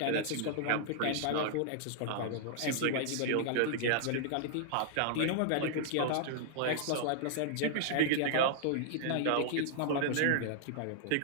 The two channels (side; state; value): both; different; correlation -0.01